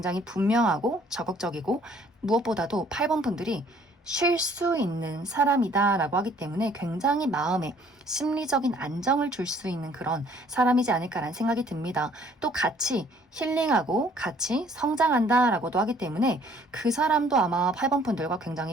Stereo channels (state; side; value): normal; both; correlation 0.59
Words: 분명하고 적극적이고 무엇보다도 8번 분들이 쉴 수 있는 사람이다 라고 하기 때문에 굉장히 마음에 심리적인 안정을 줄 수 있는 그런 사람이지 않을까라는 생각이 듭니다. 또 같이 힐링하고 같이 성장한다 라고도 하기 때문에 그 사람도 아마 8번 분들과